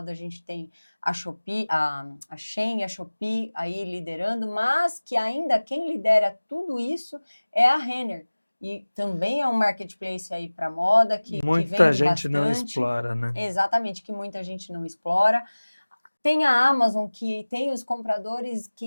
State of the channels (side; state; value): both; inverted; correlation -1.00